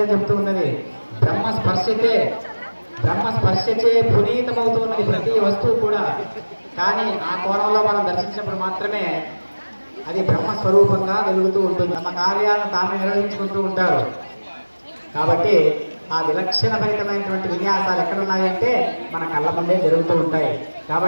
చెప్తూ ఉన్నది. బ్రహ్మ స్పర్శచే పునీతమవుతున్నది ప్రతి వస్తువు కూడా. కానీ ఆ కోణంలో మనం దర్శించినప్పుడు మాత్రమే అది బ్రహ్మ స్వరూపంగా వెలుగుతూ ఉంటుంది. తమ కార్యాలను తామే నిర్వహించుకుంటూ ఉంటారు. కాబట్టి ఆ విలక్షణభరితమైనటువంటి విన్యాసాలు ఎక్కడ ఉన్నాయంటే మన కళ్ళ ముందే జరుగుతూ ఉంటాయి.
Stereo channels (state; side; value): inverted; both; correlation -1.00